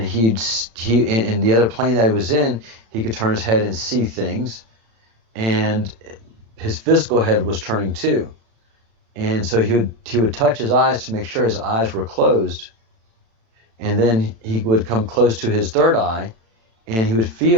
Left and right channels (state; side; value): late; left; 36 ms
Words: he in the other plane that he was in, he could turn his head and see things, and his physical head was turning too. And so he would touch his eyes to make sure his eyes were closed, and then he would come close to his third eye, and he would